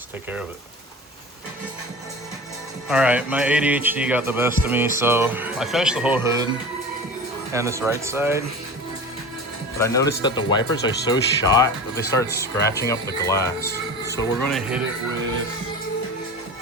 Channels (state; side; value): normal; both; correlation 0.33